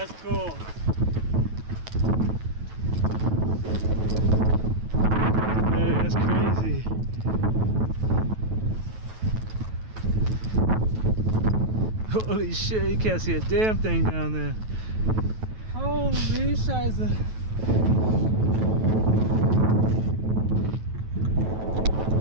cool. Hey, that's crazy. Holy shit, you can't see a damn thing down there. Holy scheiße.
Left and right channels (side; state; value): left; late; 9.2 ms